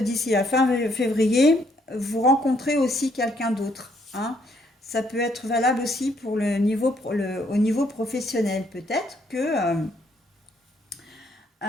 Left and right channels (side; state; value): both; normal; correlation 0.69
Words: la fin février, vous rencontrez aussi quelqu'un d'autre, hein. Ça peut être valable aussi pour au niveau professionnel. Peut-être que,